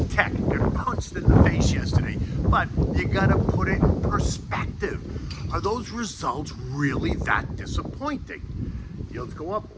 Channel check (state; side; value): identical; both; correlation 1.00